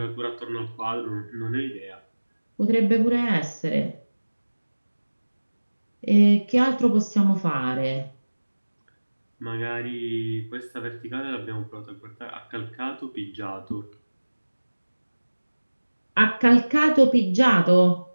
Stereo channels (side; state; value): both; inverted; correlation -1.00